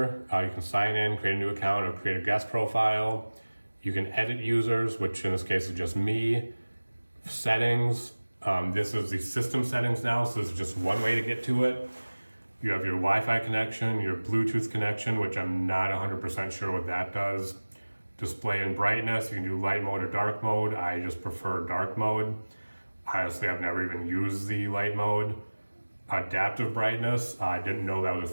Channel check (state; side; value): inverted; both; correlation -1.00